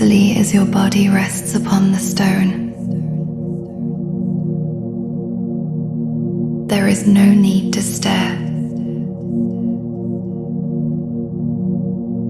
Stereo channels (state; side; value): identical; both; correlation 1.00